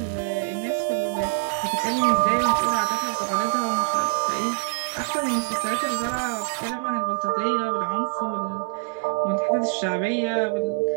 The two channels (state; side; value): silent; left; digital silence